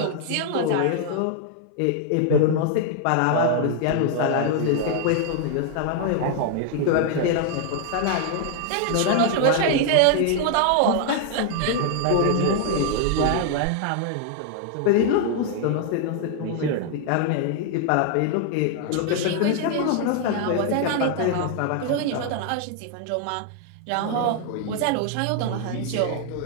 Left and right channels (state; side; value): different; both; correlation 0.00